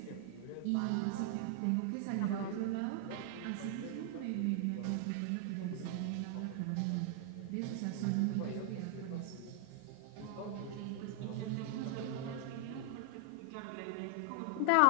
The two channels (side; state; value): both; different; correlation 0.00